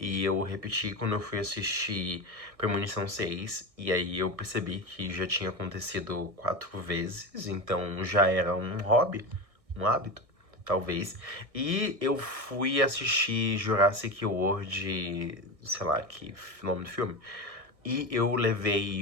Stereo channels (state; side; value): late; left; 1.6 ms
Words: eu repeti quando eu fui assistir Premonição 6. E aí eu percebi que já tinha acontecido 4 vezes. Então já era um hobby, um hábito, talvez. E eu fui assistir Jurassic World, sei lá, que nome do filme. E eu